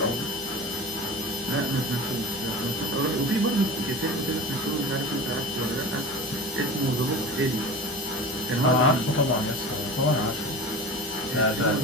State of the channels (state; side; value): normal; both; correlation 0.33